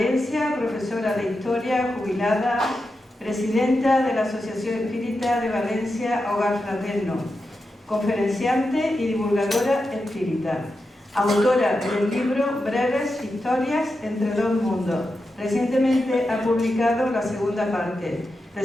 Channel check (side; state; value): both; normal; correlation 0.89